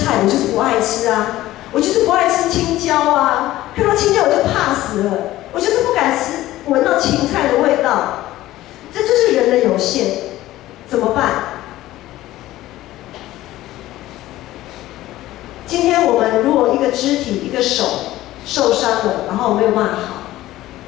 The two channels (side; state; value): right; quieter; 15.7 dB